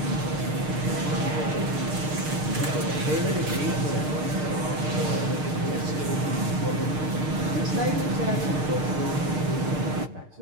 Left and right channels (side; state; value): left; late; 6.6 ms